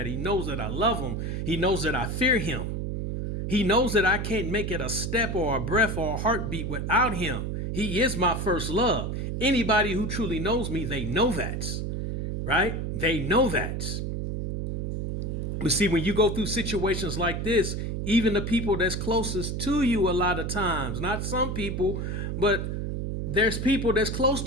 He knows that I love him. He knows that I fear him. He knows that I can't make it a step or a breath or a heartbeat without him. He is my first love. Anybody who truly knows me, they know that, right? They know that. But see, when you go through situations like this, even the people that's closest to you a lot of times, not some people, but there's people that's close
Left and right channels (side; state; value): right; noise; hum, 3 dB below the sound